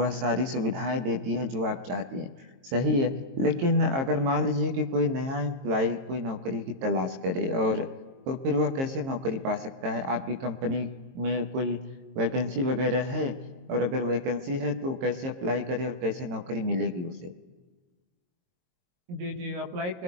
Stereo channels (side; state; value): left; late; 22 ms